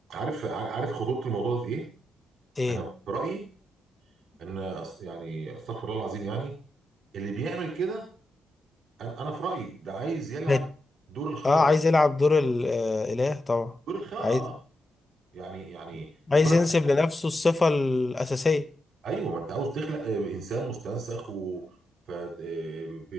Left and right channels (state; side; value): normal; both; correlation 0.87